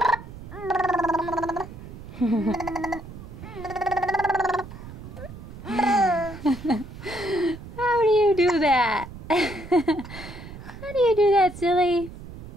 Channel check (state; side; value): noise; right; rumble, 13 dB below the sound